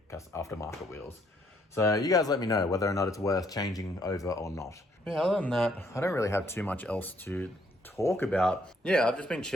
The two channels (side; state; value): both; normal; correlation 0.68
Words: wheels. So you guys let me know whether or not it's worth changing over or not. Yeah, other than that, I don't really have too much else to talk about. Yeah, I've just been